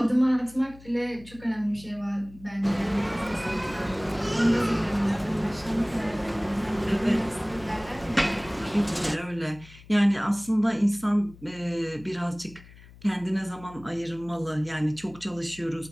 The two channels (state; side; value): noise; left; hum, 21 dB below the sound